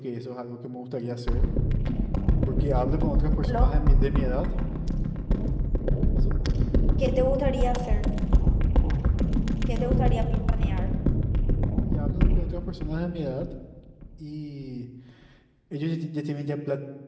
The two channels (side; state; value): both; identical; correlation 1.00